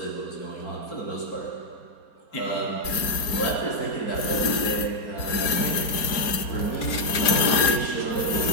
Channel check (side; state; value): right; late; 4.3 ms